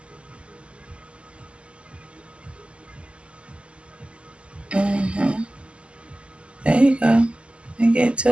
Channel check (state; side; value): late; left; 0.054 ms